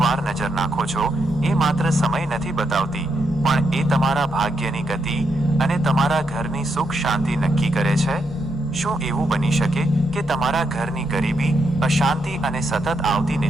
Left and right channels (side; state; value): both; normal; correlation 0.81